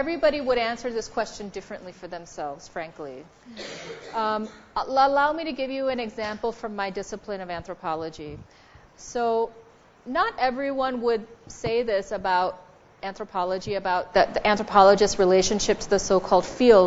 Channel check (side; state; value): both; identical; correlation 1.00